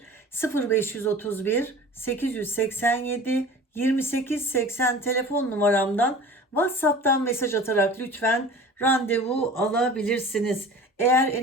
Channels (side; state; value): both; normal; correlation 0.40